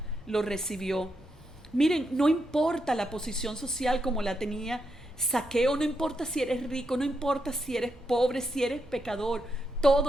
lo recibió. Miren, no importa la posición social como la tenía Zaqueo, no importa si eres rico, no importa si eres pobre, si eres pecador,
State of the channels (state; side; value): normal; both; correlation 0.82